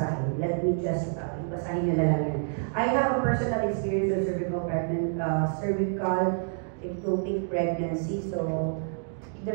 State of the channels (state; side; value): silent; left; digital silence